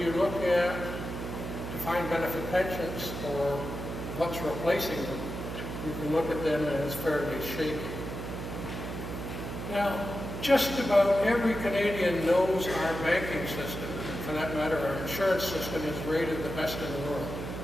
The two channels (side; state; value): right; noise; hum, 6 dB below the sound